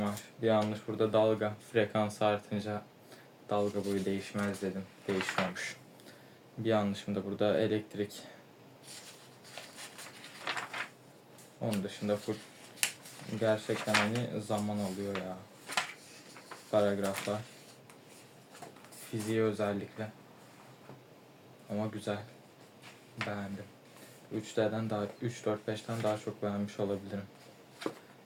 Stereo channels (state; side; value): identical; both; correlation 1.00